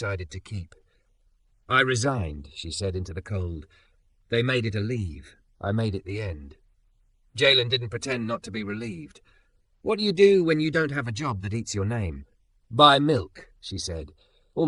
to keep. "I resigned," she said into the cold. "They made it a leave. I made it the end." Jalen didn't pretend not to be relieved. "What do you do when you don't have a job that eats your name?" "Buy milk," she said,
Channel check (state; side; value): identical; both; correlation 1.00